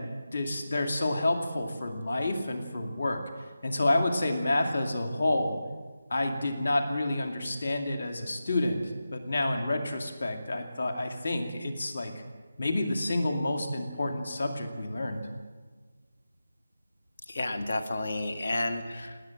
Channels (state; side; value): inverted; both; correlation -0.92